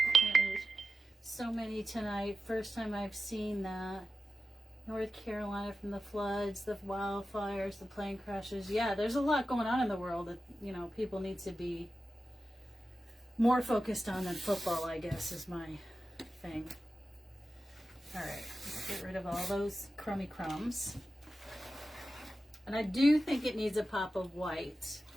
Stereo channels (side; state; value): both; normal; correlation 0.93